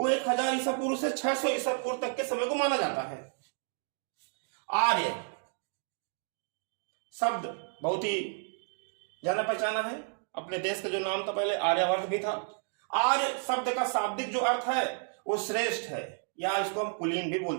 1000 ईसा पूर्व से 600 ईसा पूर्व तक के समय को माना जाता है। आर्य शब्द बहुत ही जाना पहचाना है। अपने देश का जो नाम था पहले आर्यवर्त भी था। आर्य शब्द का शाब्दिक जो अर्थ है वो श्रेष्ठ है, या इसको हम कुलीन भी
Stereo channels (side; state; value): left; silent; 57 dB below the other